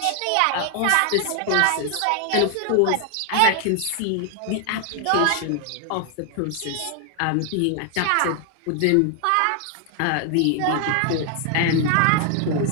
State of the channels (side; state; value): both; different; correlation 0.00